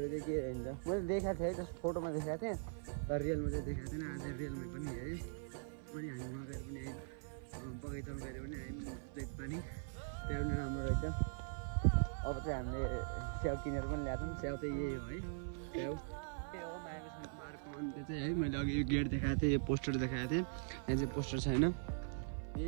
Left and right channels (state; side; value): silent; left; 50 dB below the other